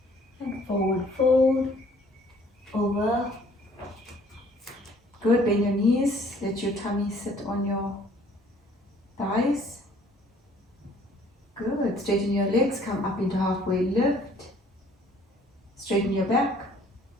And forward fold. Over. Good, bend your knees. Let your tummy sit on your thighs. Good, straighten your legs. Come up into halfway lift. Straighten your back.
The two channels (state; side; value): normal; both; correlation 0.58